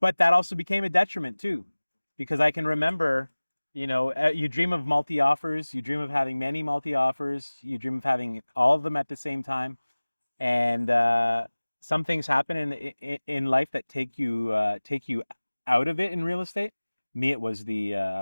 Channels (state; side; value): inverted; both; correlation -1.00